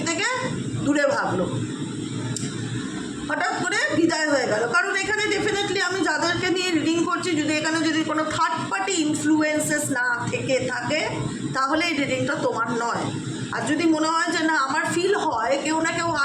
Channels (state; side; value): identical; both; correlation 1.00